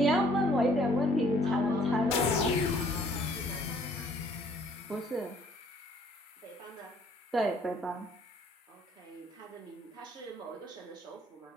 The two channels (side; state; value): both; normal; correlation 0.61